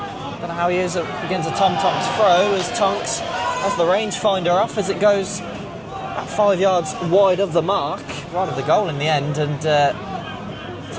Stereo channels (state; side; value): identical; both; correlation 1.00